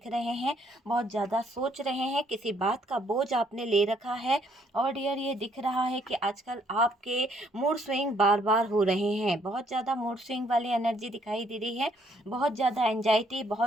रहे हैं, बहुत ज़्यादा सोच रहे हैं, किसी बात का बोझ आपने ले रखा है। और डियर, ये दिख रहा है कि आजकल आपके मूड स्विंग बार बार हो रहे हैं। बहुत ज़्यादा मूड स्विंग वाली एनर्जी दिखाई दे रही है। बहुत ज़्यादा एंजाइटी,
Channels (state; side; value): normal; both; correlation 0.67